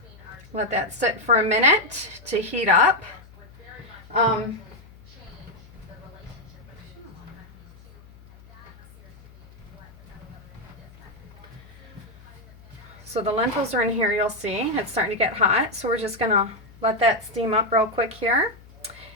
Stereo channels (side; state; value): left; noise; hum, 22 dB below the sound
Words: Let that sit for a minute to heat up. So the lentils are in here, you'll see. It's starting to get hot, so we're just going to let that steam up real quick here.